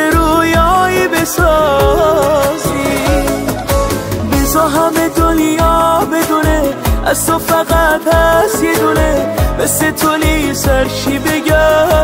رویایی بسازی. بذار همه دنیا بدونه از تو فقط هست یه دونه، مثل تو سرشی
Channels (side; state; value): both; identical; correlation 1.00